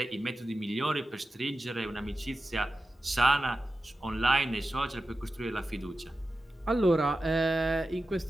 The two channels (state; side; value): normal; both; correlation 0.93